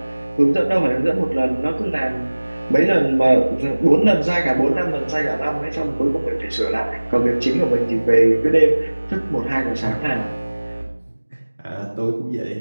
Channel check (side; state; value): both; inverted; correlation -1.00